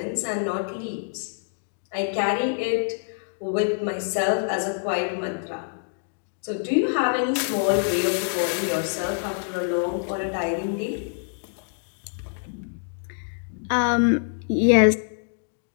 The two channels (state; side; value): silent; right; digital silence